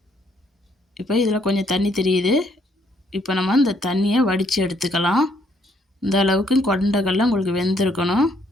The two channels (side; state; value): both; normal; correlation 0.69